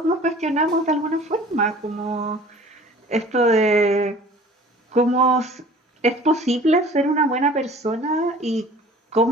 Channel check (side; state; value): both; normal; correlation 0.46